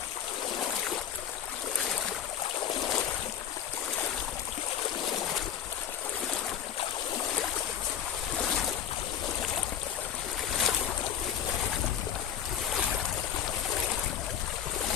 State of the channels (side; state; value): right; quieter; 8.9 dB